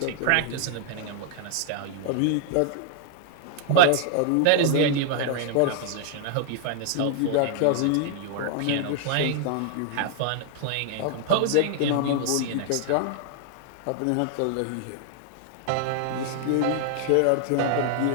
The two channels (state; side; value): different; both; correlation 0.00